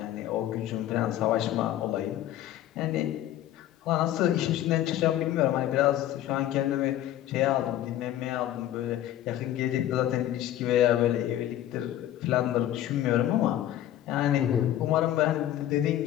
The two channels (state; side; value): quieter; right; 12.6 dB